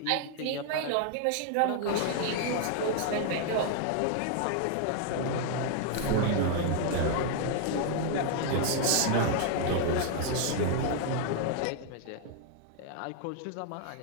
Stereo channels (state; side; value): different; both; correlation 0.00